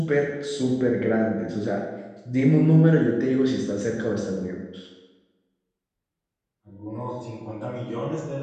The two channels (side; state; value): both; identical; correlation 1.00